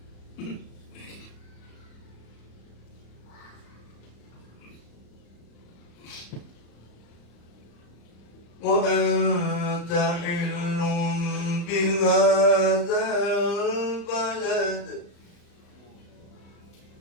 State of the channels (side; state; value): right; late; 35 ms